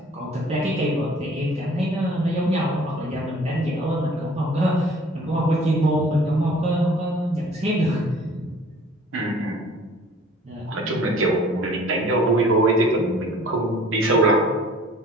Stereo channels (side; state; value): both; normal; correlation 0.51